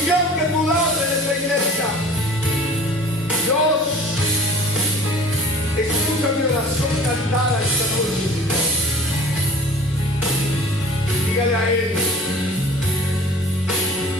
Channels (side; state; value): both; normal; correlation 0.45